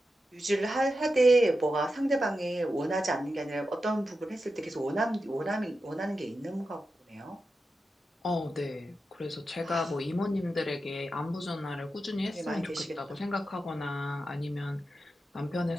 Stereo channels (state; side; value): normal; both; correlation 0.90